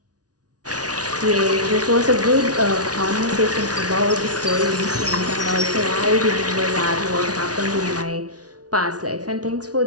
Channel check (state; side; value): late; left; 0.68 ms